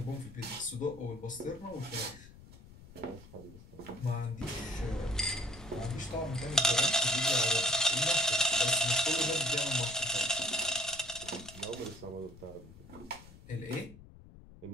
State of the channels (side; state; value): left; noise; rumble, 19 dB below the sound